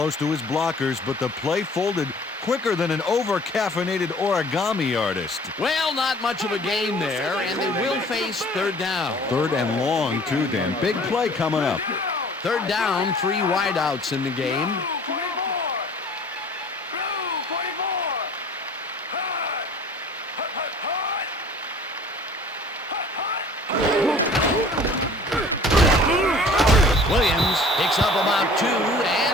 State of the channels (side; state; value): both; normal; correlation 0.49